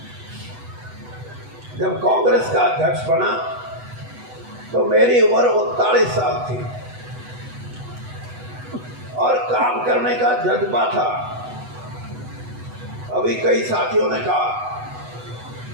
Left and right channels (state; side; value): late; left; 8.0 ms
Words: जब कांग्रेस का अध्यक्ष बना तो मेरी उम्र 39 साल थी और काम करने का जज्बा था। अभी कई साथियों ने कहा